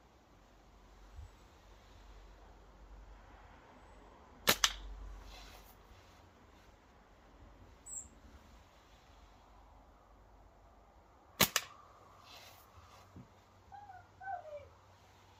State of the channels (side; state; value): both; identical; correlation 1.00